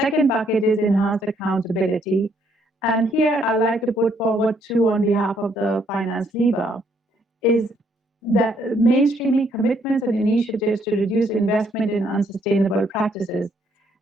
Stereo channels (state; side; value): normal; both; correlation 0.69